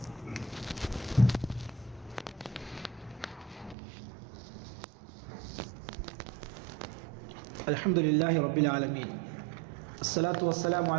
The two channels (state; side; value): drops out; left; at 3.8 s